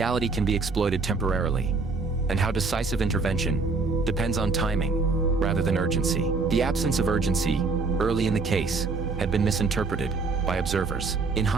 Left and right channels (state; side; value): quieter; left; 4.0 dB